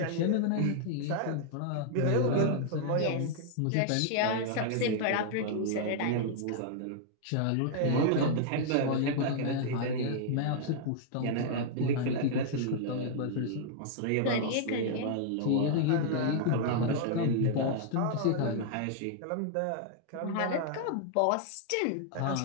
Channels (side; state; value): both; different; correlation -0.01